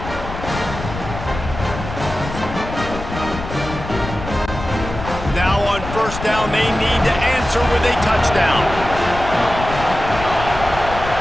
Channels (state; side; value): noise; left; rumble, 9 dB below the sound